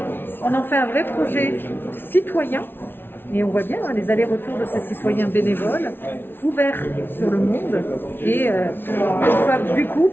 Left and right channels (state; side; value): late; right; 0.11 ms